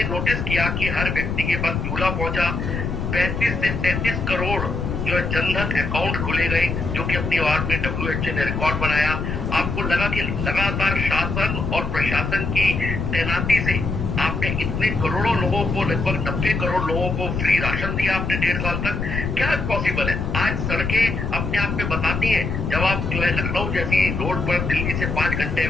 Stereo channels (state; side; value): noise; left; rumble, 3 dB below the sound